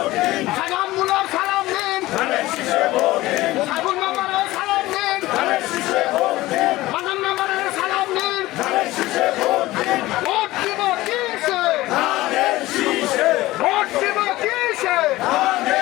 সাজান মুলার সালাম নিন, সাইফুল মেম্বারের সালাম নিন, মানন মেম্বারের সালাম নিন। ভোট দিব কিসে, ভোট দিব কিসে,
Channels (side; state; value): right; quieter; 17.9 dB